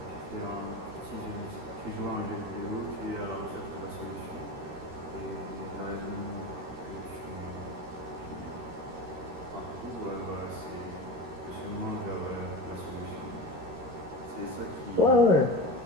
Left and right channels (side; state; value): left; late; 13 ms